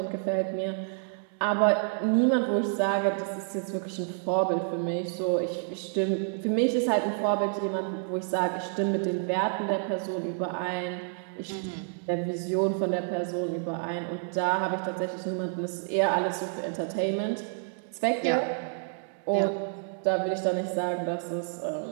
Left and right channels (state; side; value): silent; left; digital silence